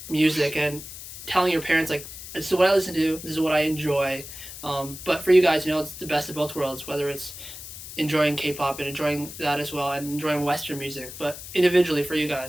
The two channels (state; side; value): noise; left; hiss, 12 dB below the sound